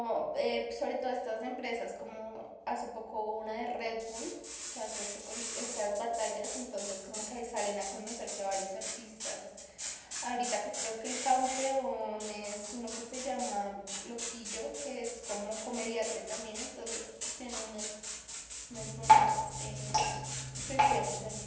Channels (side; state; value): both; identical; correlation 1.00